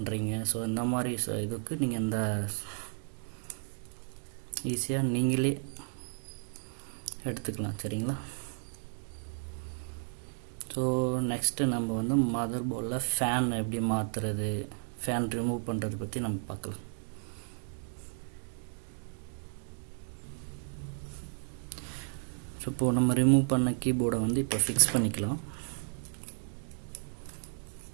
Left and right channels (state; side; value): silent; left; 56 dB below the other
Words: ஸோ இந்த மாதிரி இதுக்கு நீங்கள் இந்த ஈஸியாக நீங்களே எடுத்துக்கலாம், சரிங்களா? ஸோ நெக்ஸ்ட்டு நம்ம வந்து மதர் போர்டில் ஃபேன் எப்படி மாற்றுறது, ஃபேன் ரிமூவ் பண்ணுறது பற்றி நம்ம பார்க்கலாம். ஸோ இப்போது நம்ம ரிமூவ் பண்ண கீபோர்டை வந்து இப்போ ஃபிக்ஸ் பண்ணிக்கலாம்.